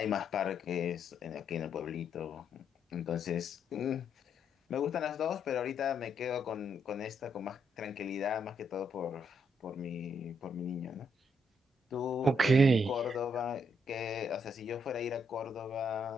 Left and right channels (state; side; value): normal; both; correlation 0.75